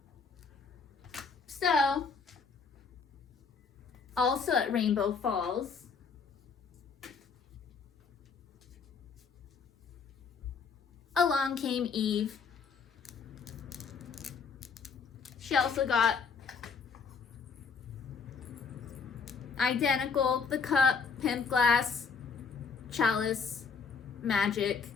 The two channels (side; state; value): right; quieter; 5.4 dB